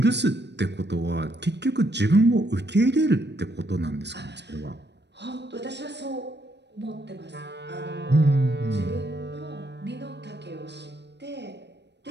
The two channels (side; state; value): left; late; 0.50 ms